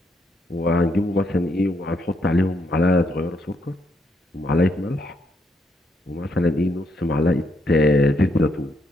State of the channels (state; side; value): normal; both; correlation 0.76